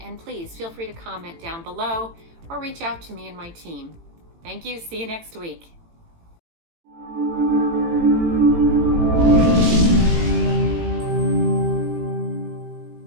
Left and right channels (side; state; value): left; late; 18 ms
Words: and please feel free to comment down below or reach out to me and my team. Thank you. See you next week.